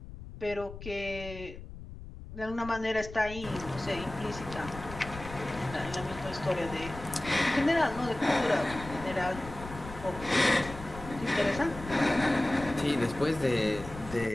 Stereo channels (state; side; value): noise; left; rumble, 13 dB below the sound